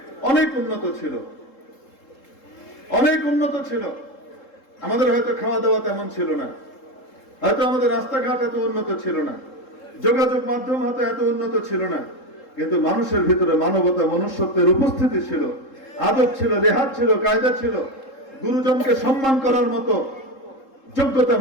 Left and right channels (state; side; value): late; right; 3.7 ms